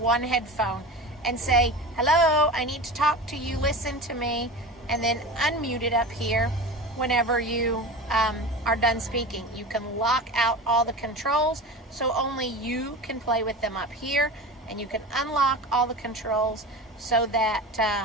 headphone and say, hello, I need to talk to you, listen to me, and then unmute it up here whenever you are done speaking. You can lock out all the controls so only you can play with them up here, and you can unlock all the controls so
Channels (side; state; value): both; normal; correlation 0.30